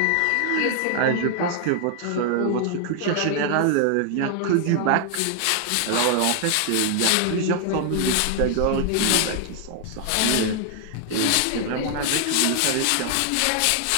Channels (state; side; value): different; both; correlation 0.00